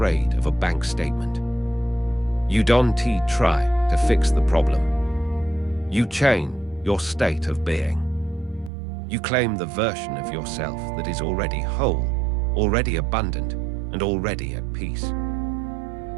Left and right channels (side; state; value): left; drops out; at 8.7 s